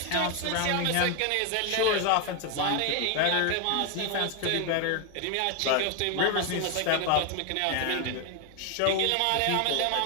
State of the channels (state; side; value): different; both; correlation 0.01